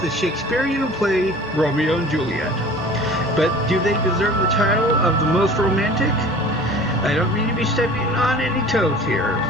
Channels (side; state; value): both; normal; correlation 0.44